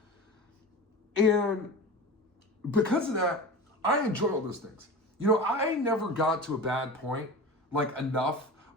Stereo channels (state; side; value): normal; both; correlation 0.31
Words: And because of that, I enjoy all those things. You know, I never got to a bad point, like enough,